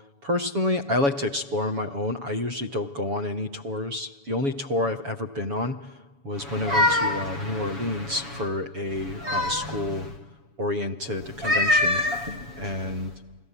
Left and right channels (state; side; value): late; left; 7.1 ms